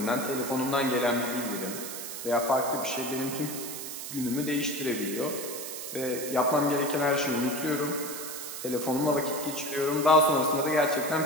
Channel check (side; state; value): right; noise; hiss, 7 dB below the sound